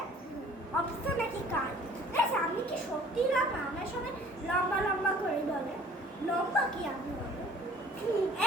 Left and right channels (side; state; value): both; normal; correlation 0.52